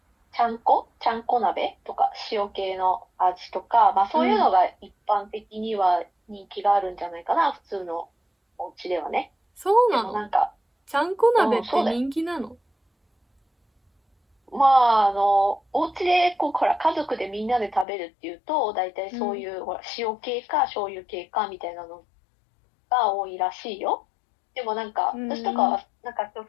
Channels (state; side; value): drops out; right; at 17.9 s